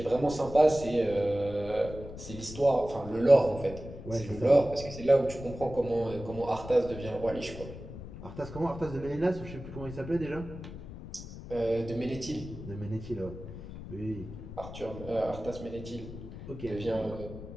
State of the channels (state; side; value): noise; left; rumble, 12 dB below the sound